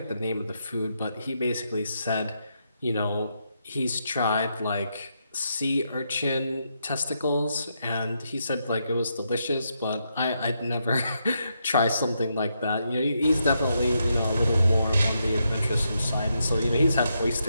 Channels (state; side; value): inverted; both; correlation -0.81